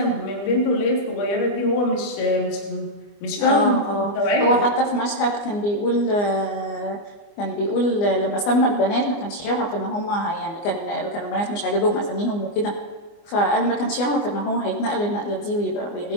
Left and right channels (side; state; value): right; late; 24 ms